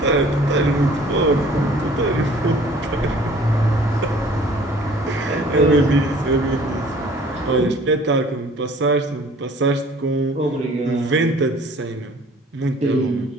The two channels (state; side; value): normal; both; correlation 0.52